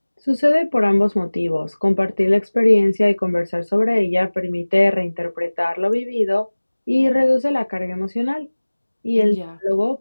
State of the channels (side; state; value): both; inverted; correlation -1.00